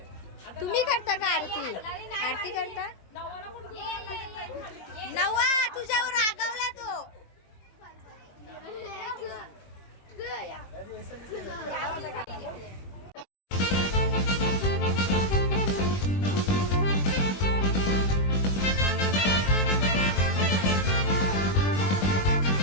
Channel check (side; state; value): right; late; 21 ms